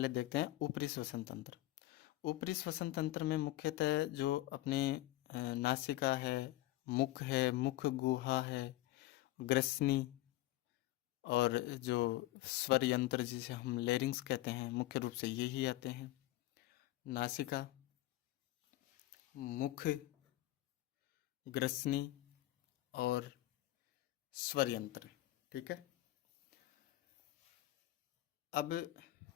देखते हैं ऊपरी श्वसन तंत्र। ऊपरी श्वसन तंत्र में मुख्यतः जो अपने नासिका है, मुख है, मुख गुहा है, ग्रसनी, और जो स्वर यंत्र जिसे हम लेरिंग्स कहते हैं, मुख्य रूप से यही आते हैं। नासिका, मुख, ग्रसनी और स्वर यंत्र। ठीक है, अब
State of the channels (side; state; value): right; quieter; 16.6 dB